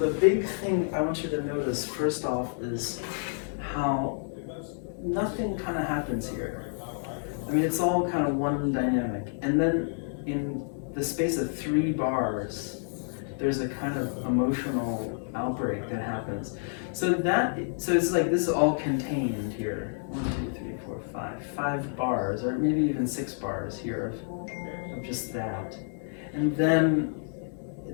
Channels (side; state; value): right; silent; digital silence